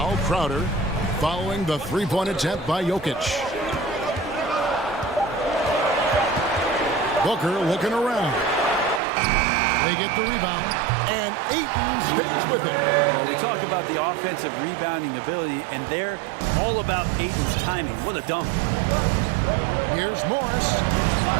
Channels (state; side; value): drops out; left; at 9.0 s